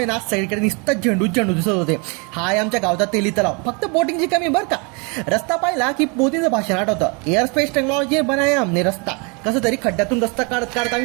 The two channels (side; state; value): left; quieter; 32.2 dB